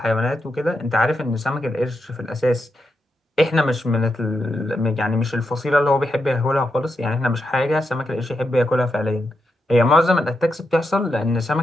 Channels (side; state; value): both; normal; correlation 0.85